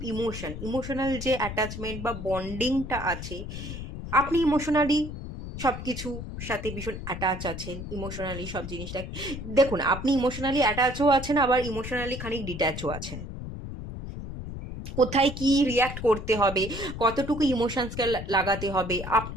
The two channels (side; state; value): left; noise; rumble, 8 dB below the sound